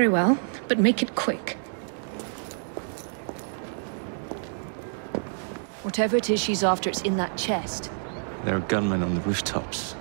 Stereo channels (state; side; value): silent; left; 60 dB below the other